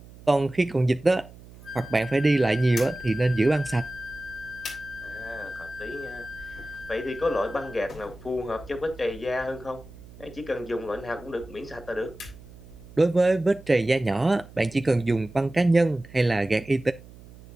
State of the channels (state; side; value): noise; right; hum, 20 dB below the sound